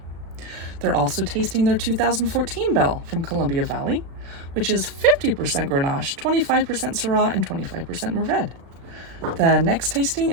They're also tasting their 2014 Belle from Columbia Valley, which is 50% Grenache, 25% Syrah, and 25% Mourvèdre. The next tasting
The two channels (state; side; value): late; left; 36 ms